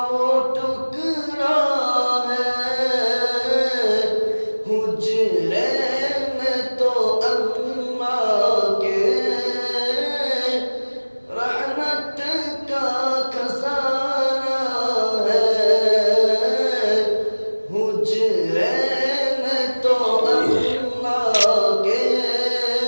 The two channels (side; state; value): both; inverted; correlation -1.00